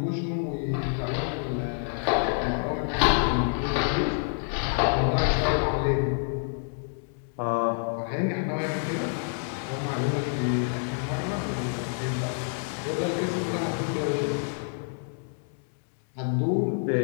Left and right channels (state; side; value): silent; right; 60 dB below the other